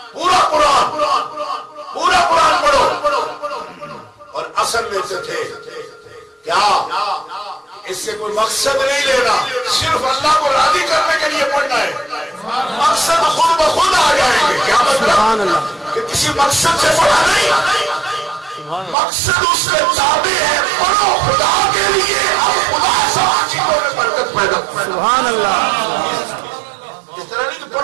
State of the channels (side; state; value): left; drops out; at 18.9 s